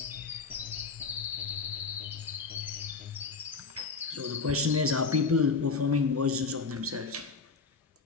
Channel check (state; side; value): quieter; right; 4.6 dB